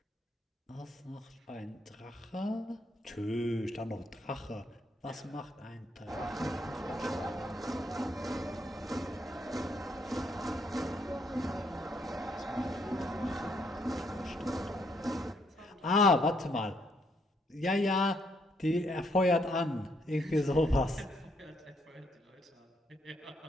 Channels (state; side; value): normal; both; correlation 0.73